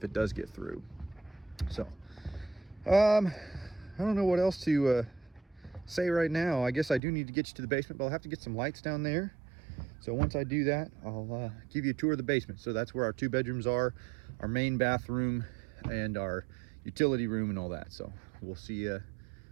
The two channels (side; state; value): left; drops out; at 7.0 s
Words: it does get through. So I don't know what else to say right now. I guess I do need to get you to the basement, but I'll have to get some lights down there. So once I do that, I'll give you a tour of the basement. So that's where our 2 bedrooms are, our main bathroom, and our utility room and all that. So we'll see you